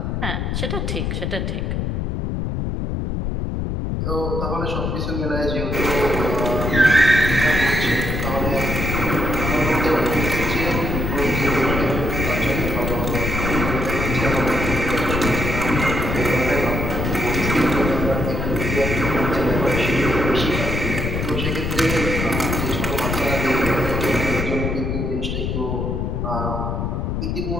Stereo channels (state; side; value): noise; left; rumble, 1 dB below the sound